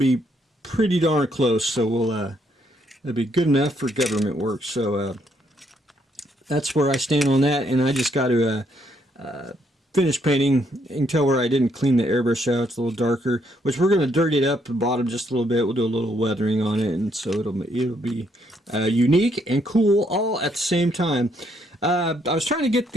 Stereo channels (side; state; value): both; normal; correlation 0.72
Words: pretty darn close, so it'll be good enough for government work. So that's where I stand on that, and I just got to finish painting. You can tell where I didn't clean the airbrush out. It's a little darker, which we're going to dirty it up the bottom just a little bit. We'll do a little weathering on it, and so it'll be unique and cool all at the same time. I was trying to get